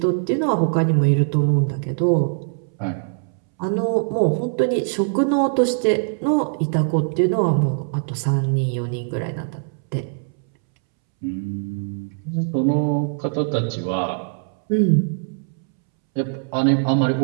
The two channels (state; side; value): silent; left; 64 dB below the other